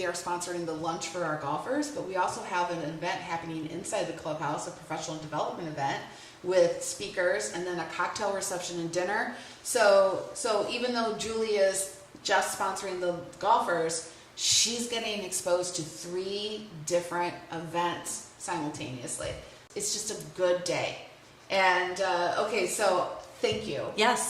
sponsoring the lunch for our golfers, but we also have an event happening inside the clubhouse, a professional development event with speakers, and then a cocktail reception and dinner. So even though Julie is just sponsoring the golfers, she's getting exposed to 3 different events simultaneously. It's just a good day. And so thank you.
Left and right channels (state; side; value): identical; both; correlation 1.00